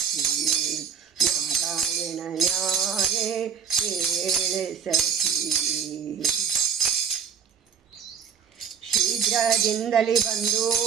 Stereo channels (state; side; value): quieter; left; 7.2 dB